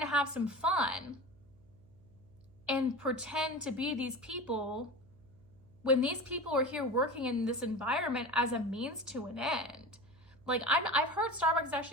have some fun and pretend to be these people when these people are here working in this environment as a means to an end. Like, I've heard Starbucks is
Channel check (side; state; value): right; noise; hum, 26 dB below the sound